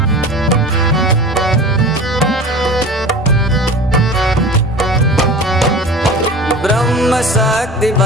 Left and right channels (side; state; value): both; normal; correlation 0.36